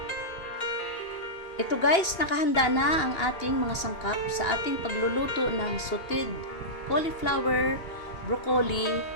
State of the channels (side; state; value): right; late; 2.8 ms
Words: Ito guys, nakahanda na ang ating mga sangkap sa ating pagluluto ng sauteed cauliflower, broccoli